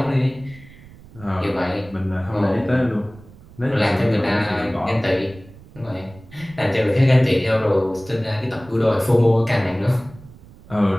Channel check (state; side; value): noise; right; rumble, 21 dB below the sound